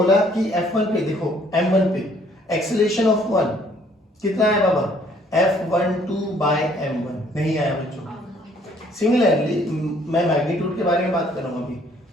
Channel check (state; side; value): normal; both; correlation 0.62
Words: कि F1 पे देखो, M1 पे एक्सेलरेशन ऑफ 1 कितना है बाबा? F12 बाय M1 नहीं आया बच्चों। सिमिलरली मैं मैग्नीट्यूड के बारे में बात कर रहा हूं अभी।